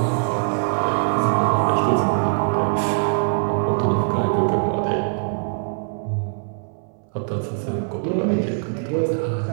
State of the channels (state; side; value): silent; left; 64 dB below the other